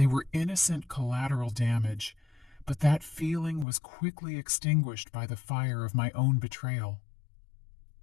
were innocent collateral damage, but that feeling was quickly extinguished by the fire of my own betrayal.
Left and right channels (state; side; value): drops out; right; at 3.7 s